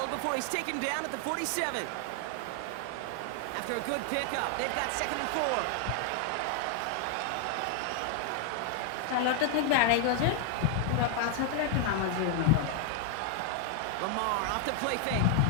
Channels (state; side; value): different; both; correlation 0.00